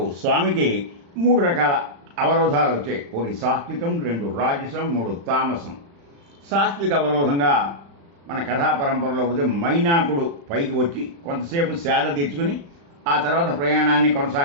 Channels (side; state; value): left; late; 35 ms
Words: స్వామికి 3 రకాల అవరోధాలు వచ్చాయి. 1 సాత్వికం, 2 రాజసం, 3 తామసం. సాత్విక అవరోధంగా మన కథా పరంపరలో పోతే మైనాకుడు పైకి వచ్చి కొంతసేపు సేద తెచ్చుకుని ఆ తర్వాత ప్రయాణాన్ని